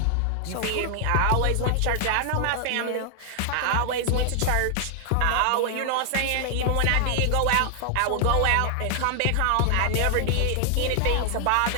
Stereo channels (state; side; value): different; both; correlation 0.00